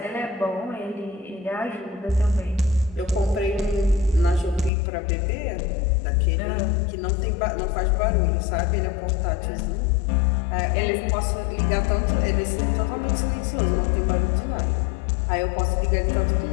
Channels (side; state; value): right; drops out; at 4.7 s